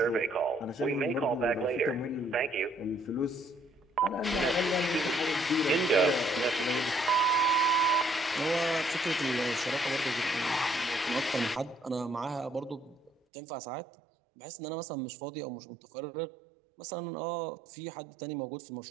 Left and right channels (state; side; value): drops out; left; at 13.1 s